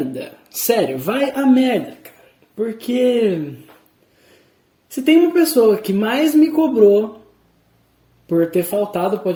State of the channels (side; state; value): both; identical; correlation 1.00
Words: Sério, vai a merda, cara. Porque se tem uma pessoa que mais me cobrou por ter faltado o